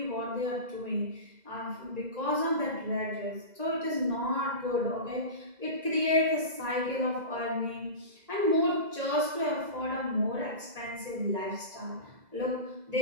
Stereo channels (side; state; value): left; late; 2.0 ms